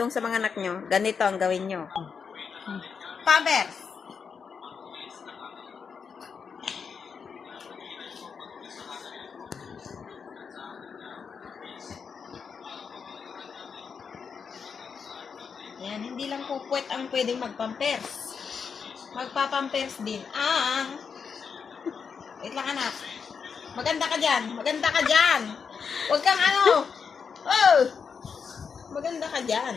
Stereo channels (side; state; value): right; quieter; 6.1 dB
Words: sa mga anak nyo, ganito ang gawin nyo. Pampers! Yan, hindi lang po puwet ang pwedeng magpampers. Magpapampers din ang... Wait lang anak. Maganda ka dyan. Maganda ka dyan. Huwag kang ano. Oh! Maganda ka dyan.